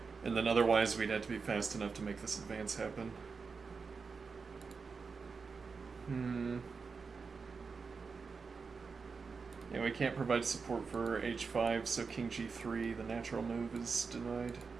And then otherwise we'd have to be fast enough to make this advance happen. Yeah, we can't provide support for h5, so king g3, the natural move, is denied.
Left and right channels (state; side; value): quieter; left; 5.0 dB